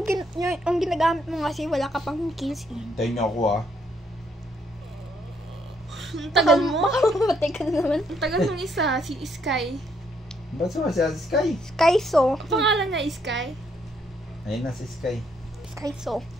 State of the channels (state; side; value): normal; both; correlation 0.72